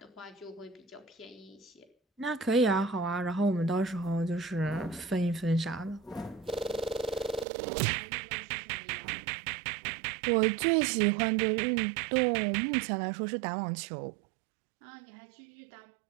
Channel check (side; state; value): left; drops out; at 7.5 s